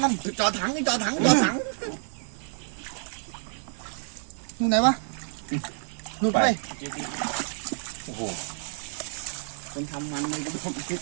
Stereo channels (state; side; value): silent; left; 59 dB below the other